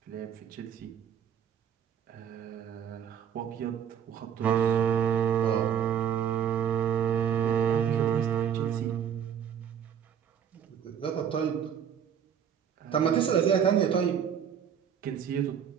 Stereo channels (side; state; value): left; quieter; 8.6 dB